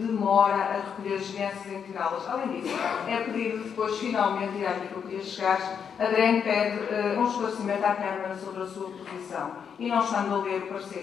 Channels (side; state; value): right; quieter; 7.2 dB